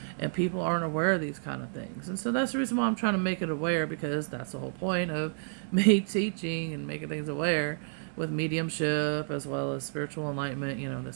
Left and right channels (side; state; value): left; silent; 58 dB below the other